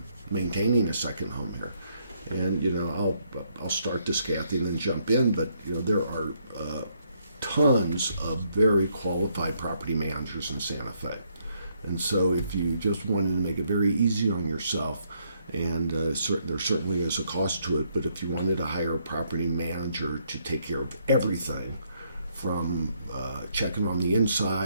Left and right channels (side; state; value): both; inverted; correlation -0.73